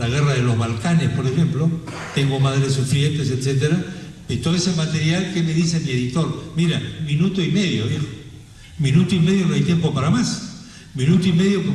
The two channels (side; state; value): both; identical; correlation 1.00